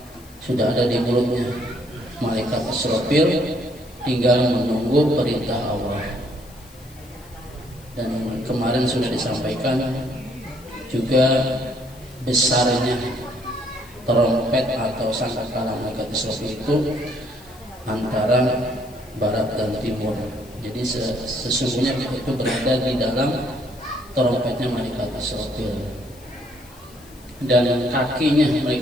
sudah ada di mulutnya malaikat Israfil, tinggal menunggu perintah Allah. Dan kemarin sudah disampaikan juga besarnya trompet atau sangkakala malaikat Israfil itu antara barat dan timur. Jadi sesungguhnya itu berada di dalam trompetnya malaikat Israfil. Dan kakinya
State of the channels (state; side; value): noise; left; hiss, 24 dB below the sound